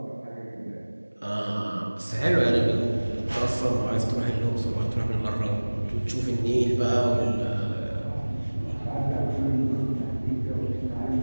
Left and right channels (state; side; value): inverted; both; correlation -1.00